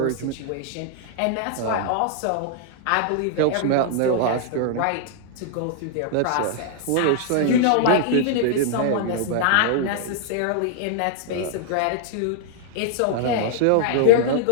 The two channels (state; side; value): different; both; correlation -0.01